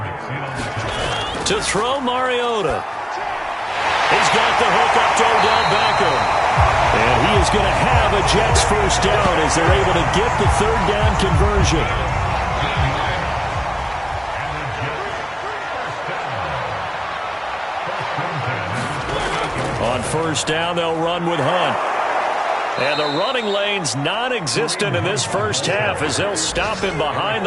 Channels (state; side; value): identical; both; correlation 1.00